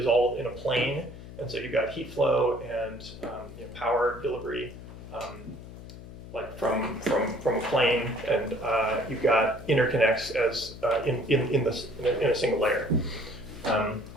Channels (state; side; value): noise; left; hum, 14 dB below the sound